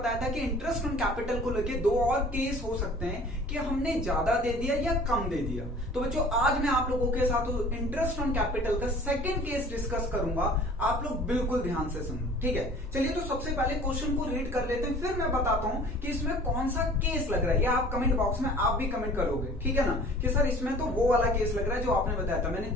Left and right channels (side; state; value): both; normal; correlation 0.47